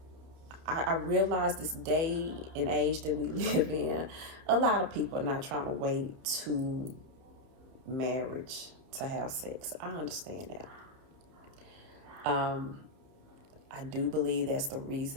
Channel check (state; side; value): late; left; 30 ms